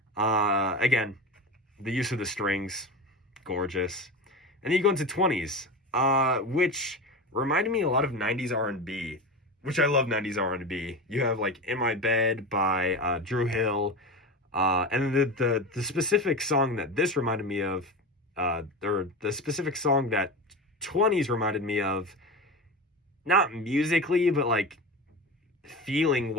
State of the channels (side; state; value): both; normal; correlation 0.25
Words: Again, the use of the strings, gorgeous. And then you go into 20s, which reminded me a lot of 90s R&B, which I love 90s R&B. You have like In My Bed by Drew Hill. And the specific song that this reminded me of, or the specific song that 20s reminded me of, not musically, but like feeling